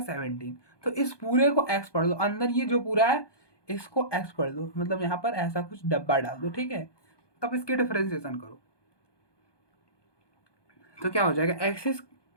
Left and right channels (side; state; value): right; late; 1.2 ms